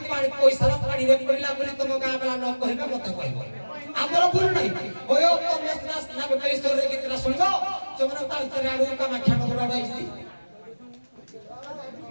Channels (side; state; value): both; inverted; correlation -1.00